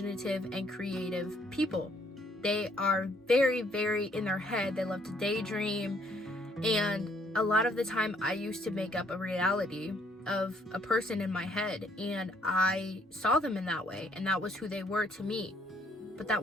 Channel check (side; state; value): both; normal; correlation 0.66